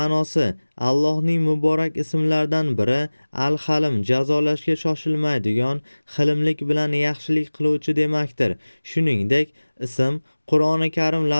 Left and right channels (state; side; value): inverted; both; correlation -1.00